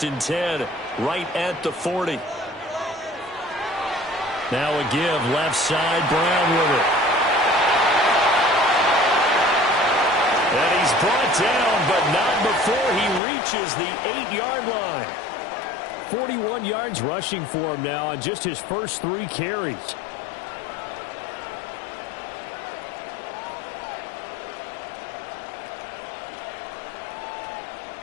and 10, right at the 40. Now a give, left side, Brown with it. And he's brought down, but not before he reaches the 8-yard line. 41 yards rushing for him now on just his first 3 carries.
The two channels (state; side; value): drops out; right; at 13.2 s